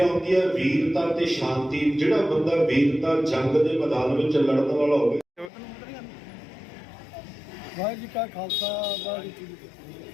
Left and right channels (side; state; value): right; drops out; at 5.5 s